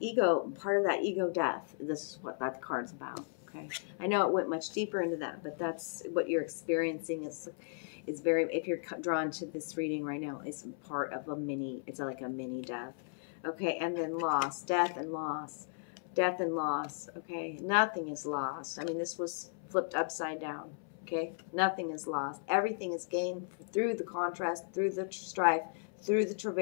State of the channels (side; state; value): right; silent; 54 dB below the other